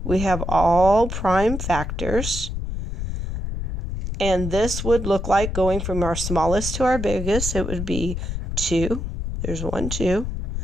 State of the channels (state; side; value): noise; left; rumble, 4 dB below the sound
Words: we have all prime factors. And this would look like going from our smallest to our biggest. It would be 2. There's 1, 2.